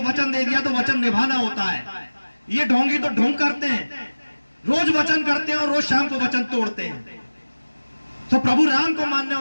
वचन दे दिया तो वचन निभाना होता है। ये ढोंगी तो ढोंग करते हैं, रोज वचन करते हैं और रोज शाम को वचन तोड़ते हैं। तो प्रभु राम को मानने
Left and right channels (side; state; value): both; inverted; correlation -1.00